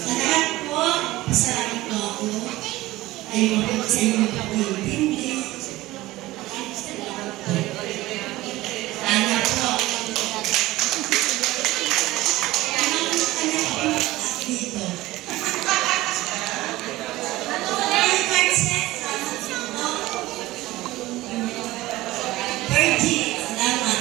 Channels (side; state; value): left; quieter; 17.9 dB